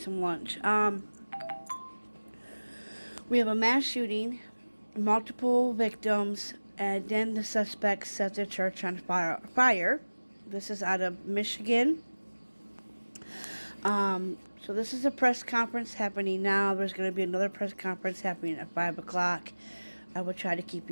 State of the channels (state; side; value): inverted; both; correlation -1.00